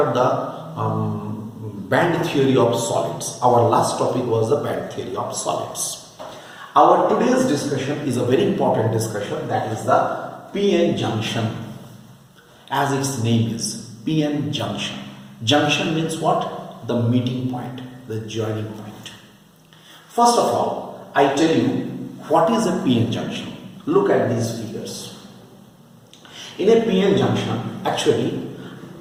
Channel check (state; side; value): identical; both; correlation 1.00